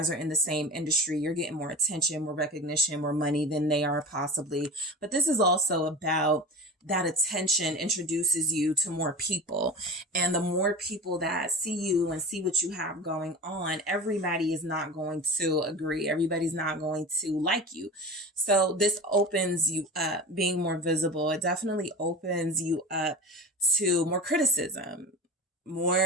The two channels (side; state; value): both; normal; correlation 0.33